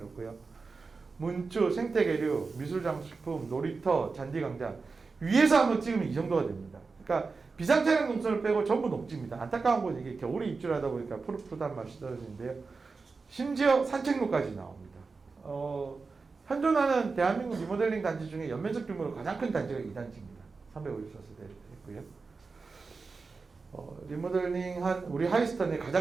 문주, 생태계류, 미술장식품, 놀이터, 잔디광장 위에서 한번 찍으면 이 정도가 됩니다. 그러니까 비상차량 동선을 빼고 전부 녹지입니다. 안타까운 건 이게 겨울에 입주를 하다 보니까 푸릇푸릇한 맛이 떨어지는데요. 심지어 산책로까지 나옵니다. 현존하는 대한민국 리모델링 단지 중에 연면적 규모로 가장 큰 단지가 이 단지입니다. 354세대 있고요. 리모델링한 우리 하이스턴의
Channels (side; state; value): left; quieter; 4.4 dB